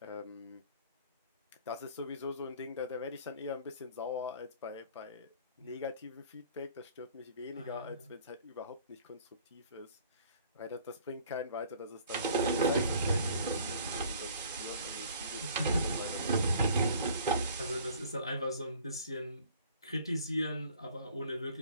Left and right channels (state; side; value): inverted; both; correlation -0.52